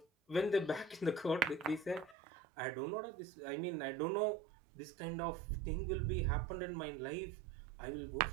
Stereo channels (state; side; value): drops out; left; at 2.1 s